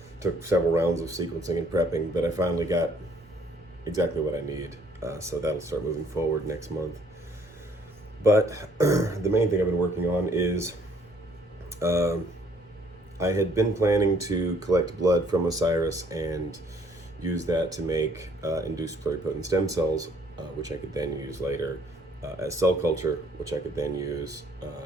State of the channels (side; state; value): both; normal; correlation 0.62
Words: Took several rounds of sequencing and prepping, but I finally got exactly what I need. So that'll start moving forward next month. But the main thing I've been working on is I had been planning to collect blood from Osiris and use that to make induced pluripotent stem cells, which I could then use later as cell culture, which I could then use